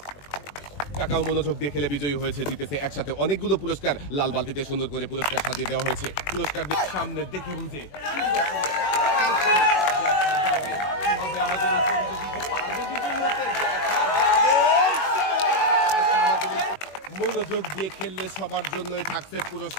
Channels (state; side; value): late; right; 21 ms